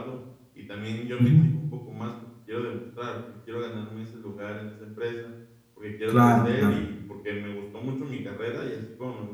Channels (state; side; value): identical; both; correlation 1.00